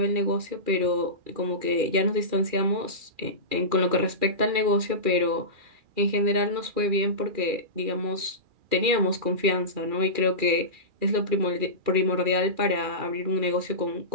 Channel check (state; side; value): late; left; 2.4 ms